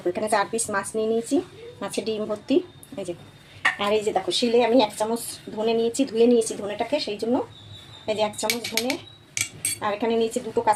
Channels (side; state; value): both; identical; correlation 1.00